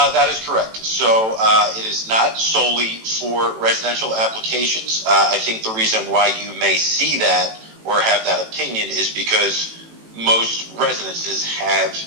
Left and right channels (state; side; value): late; left; 18 ms